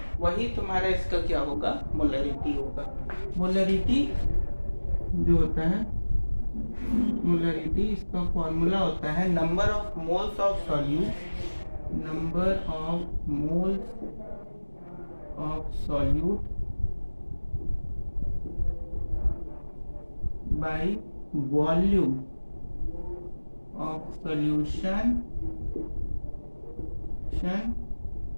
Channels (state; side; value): inverted; both; correlation -1.00